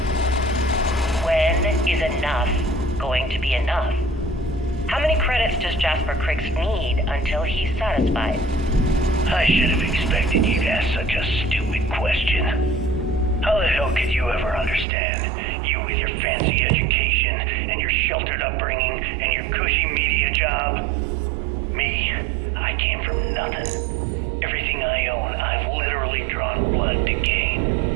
When is enough going to be enough? How many credits does Jasper Criggs need until he's satisfied? I should have expected you to ask such a stupid question. How the hell could you ever understand? You with your fancy education, and your sheltered upbringing, and your cushy media job. Me, I came from nothing. Everything I own, I've literally drawn blood to gain.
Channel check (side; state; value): left; drops out; at 14.9 s